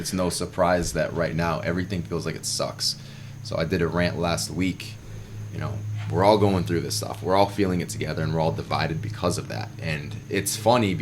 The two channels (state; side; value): identical; both; correlation 1.00